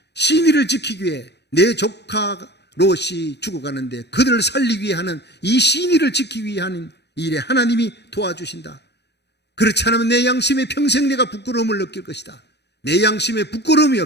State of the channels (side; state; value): right; late; 0.49 ms